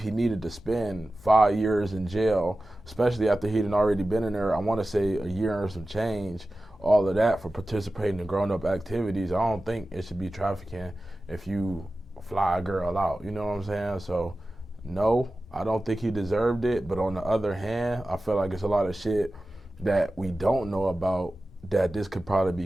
needed to spend 5 years in jail, especially after he'd already been in there, I want to say a year and some change, all of that for participating in grown-up activities. I don't think it should be trafficking if you fly a girl out. You know what I'm saying? So, no, I don't think he deserved it. But on the other hand, I feel like it's a lot of shit that we don't know about that this could probably be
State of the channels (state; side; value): normal; both; correlation 0.95